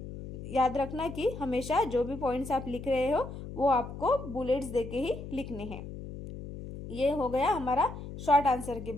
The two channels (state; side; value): noise; left; hum, 10 dB below the sound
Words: याद रखना कि हमेशा जो भी पॉइंट्स आप लिख रहे हो वो आपको बुलेट्स दे के ही लिखने हैं। ये हो गया हमारा शॉर्ट आंसर के